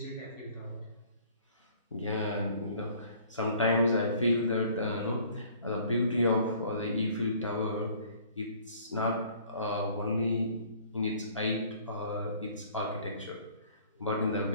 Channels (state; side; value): inverted; both; correlation -0.54